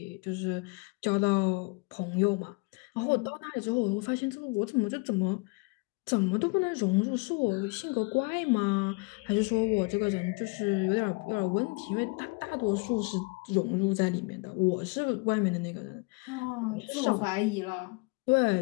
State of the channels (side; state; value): right; quieter; 29.4 dB